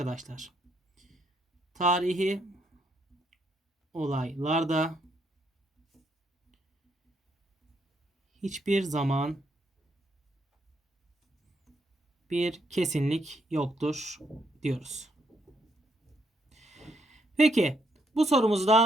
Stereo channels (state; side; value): normal; both; correlation 0.74